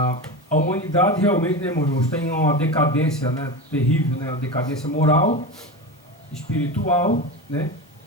humanidade realmente, né, irmão, está em uma decadência, né? Terrível, né? Uma decadência moral, espiritual, né?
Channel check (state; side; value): normal; both; correlation 0.23